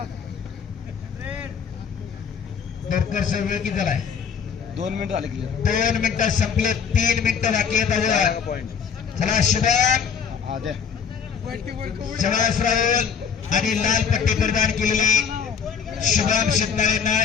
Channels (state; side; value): quieter; right; 6.8 dB